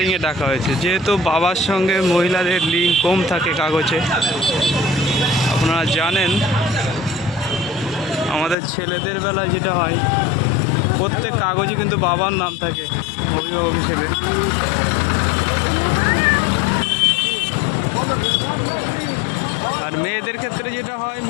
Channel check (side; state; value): right; drops out; at 8.6 s